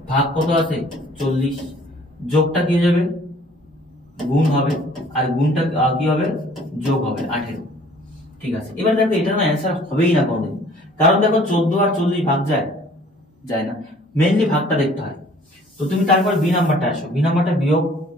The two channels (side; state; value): both; normal; correlation 0.54